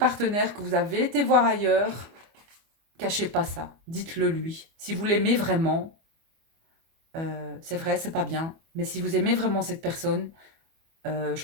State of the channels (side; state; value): left; late; 25 ms